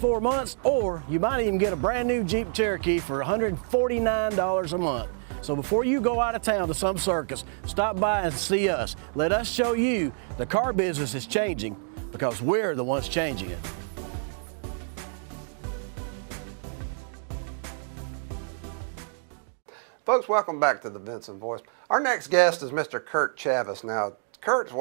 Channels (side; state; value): left; silent; digital silence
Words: months, or you might even get a brand new Jeep Cherokee for $149 a month. So before you go out of town to some circus, stop by and see us. Let us show you the car business is changing, because we're the ones changing it. Folks, welcome back to the Vinson Voice. Our next guest is Mr. Kirk Chavis. Now,